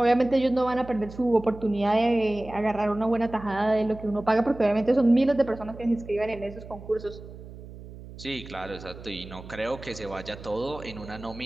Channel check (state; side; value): noise; right; hum, 15 dB below the sound